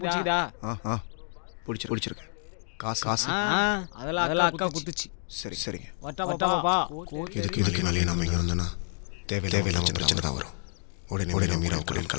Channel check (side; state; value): right; silent; 59 dB below the other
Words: புடிச்சதா? பிடிச்சிருக்கு. காசு அதெல்லாம் அக்கா குடுத்துச்சு. சரிங்க. வட்டா பாப்பா. இதுக்கு மேலே நாம இங்கே வந்தோன்னா தேவையில்லாம பிரச்சனை தான் வரும். உடனே நம்ம